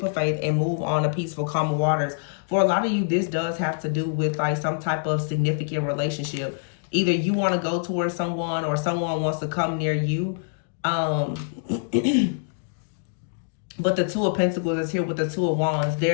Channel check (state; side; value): silent; right; digital silence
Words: of faith and move on to peaceful, calm waters. For a lot of you, this does have to do with like some type of significant relationship. Either you want to go towards someone or someone wants to come near you. But the Two of Pentacles is here with the Two of Wands.